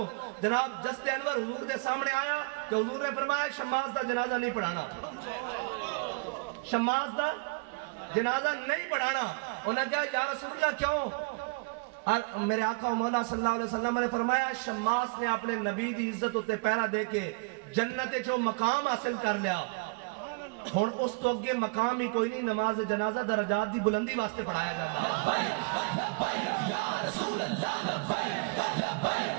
جناب جست انور حضور دے سامنے آیا کہ حضور نے فرمایا شماس دا جنازہ نہیں پڑھانا شماس دا جنازہ نہیں پڑھانا انہوں نے کہا یا رسول اللہ کیوں میرے آقا و مولا صلی اللہ علیہ وسلم نے فرمایا شماس نے اپنے نبی دی عزت ہوتے پیرا دے کے جنت جو مقام حاصل کر لیا ہون اس تو اگے مقام ہی کوئی نہیں نماز جنازہ درجات دی بلندی واسطے پڑھایا جاتا یا رسول اللہ لبیک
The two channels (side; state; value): left; quieter; 32.7 dB